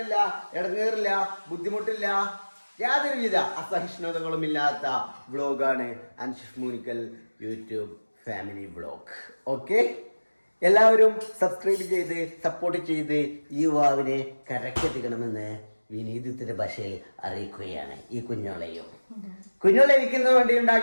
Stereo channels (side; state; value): both; inverted; correlation -1.00